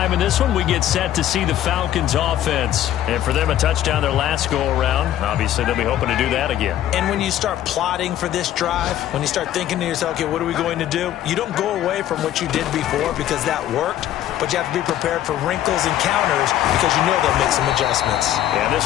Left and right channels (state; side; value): quieter; right; 12.2 dB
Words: in this one, we get set to see the Falcons offense. And for them, a touchdown their last go-around. Obviously, they'll be hoping to do that again. And when you start plotting for this drive, when you start thinking to yourself, okay, what are we going to do? You don't go away from what you did before because that worked, but you have to be prepared for wrinkles and counters because you know they'll make some adjustments. Yeah,